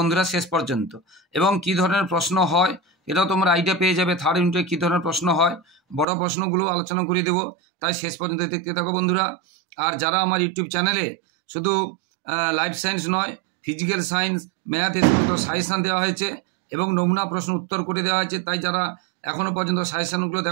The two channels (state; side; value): drops out; left; at 6.1 s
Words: শেষ পর্যন্ত, এবং কী ধরনের প্রশ্ন হয় এটাও তোমরা আইডিয়া পেয়ে যাবে। থার্ড ইউনিটে কী ধরনের প্রশ্ন হয় বড় প্রশ্নগুলো আলোচনা করে দেবো, তাই শেষ পর্যন্ত দেখতে থাকো বন্ধুরা। আর যারা আমার ইউটিউব চ্যানেলে শুধু লাইফ সায়েন্স নয়, ফিজিক্যাল সায়েন্স, ম্যাথ এ সমস্ত সাজেশান দেওয়া হয়েছে এবং নমুনা প্রশ্ন উত্তর করে দেওয়া হয়েছে, তাই যারা এখনও পর্যন্ত সাজেশানগুলো